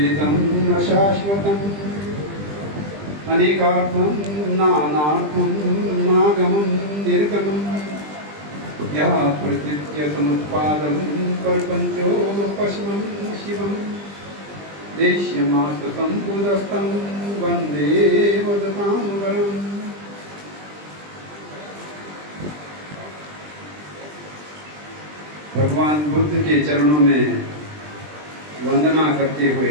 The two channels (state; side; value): late; left; 20 ms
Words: अशाश्वतम् अनेकार्थम् नानार्थम् नागमम् निर्गमम् या प्रकृत्य समुत्पादम् प्रपञ्चोपशमम् शिवम् देश्यमास्तसम्बुधस्तं वन्दे वदतां वरम्। भगवान बुद्ध के चरणों में वंदना करते